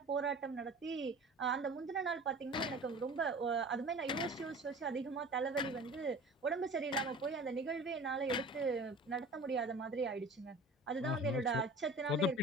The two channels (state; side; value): normal; both; correlation 0.41